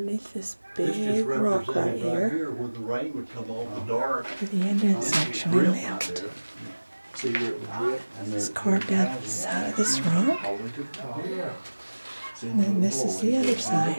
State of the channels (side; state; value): both; inverted; correlation -1.00